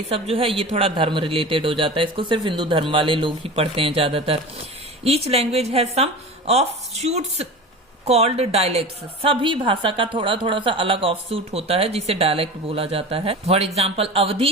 सब जो है ये थोड़ा धर्म रिलेटेड हो जाता है. इसको सिर्फ हिंदू धर्म वाले लोग ही पढ़ते हैं ज्यादातर. Each language has some of shoots called dialects. सभी भाषा का थोड़ा सा अलग ऑफ सूट होता है जिसे डायलेक्ट बोला जाता है. For example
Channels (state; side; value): normal; both; correlation 0.32